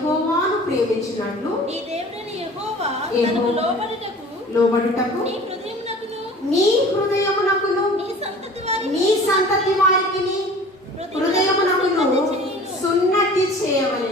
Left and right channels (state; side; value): normal; both; correlation 0.44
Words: ప్రేమించినట్లు నీ దేవుడైన యెహోవా తనకు లోబడుటకు నీ హృదయమునకును నీ సంతతి వారికి హృదయమునకును సున్నతి